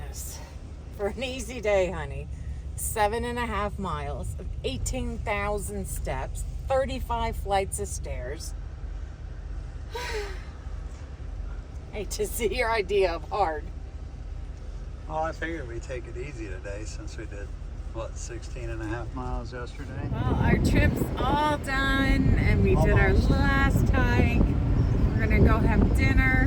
For an easy day, honey. 7.5 miles, 18,000 steps, 35 flights of stairs. Hate to see your idea of hard. Well, I figured we'd take it easy today since we did, what, 16.5 miles yesterday? Well, our trip's all done and we did our Almost. last hike. We're gonna go have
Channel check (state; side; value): identical; both; correlation 1.00